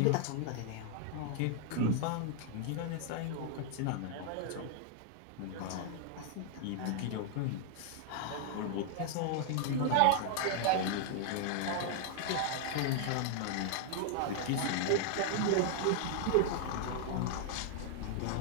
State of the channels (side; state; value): both; different; correlation 0.00